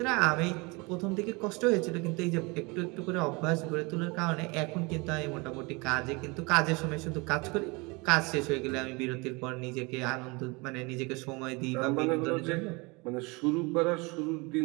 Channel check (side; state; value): left; quieter; 27.2 dB